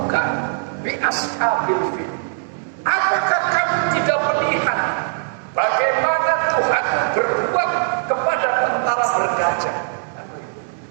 bi ashabil fil. Apakah kamu tidak melihat bagaimana Tuhan berbuat kepada tentara bergajah?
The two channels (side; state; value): left; silent; digital silence